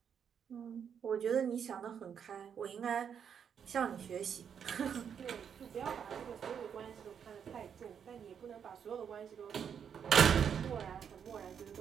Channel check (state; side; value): quieter; left; 7.7 dB